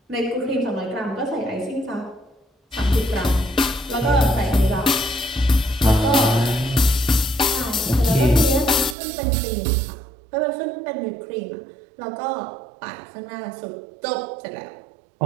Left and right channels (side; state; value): left; drops out; at 9.0 s